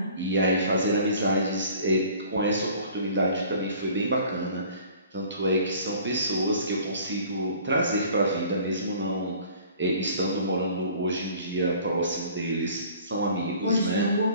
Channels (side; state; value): both; inverted; correlation -0.50